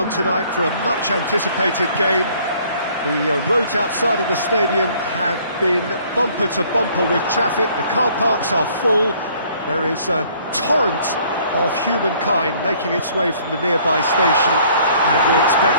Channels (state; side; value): inverted; both; correlation -0.59